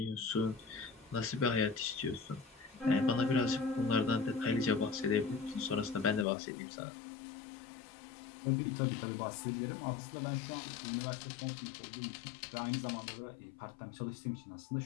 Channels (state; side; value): drops out; right; at 6.2 s